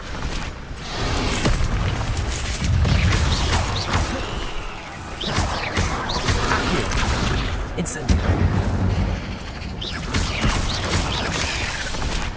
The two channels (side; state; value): both; identical; correlation 1.00